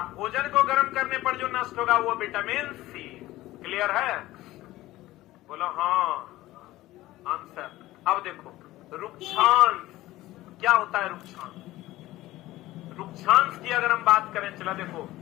भोजन को गर्म करने पर जो नष्ट होगा वो विटामिन सी। क्लियर है? बोलो हाँ। आंसर। अब देखो रुक्षांश क्या होता है? रुक्षांश की अगर हम बात करें, चला देखो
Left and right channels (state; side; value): quieter; right; 16.8 dB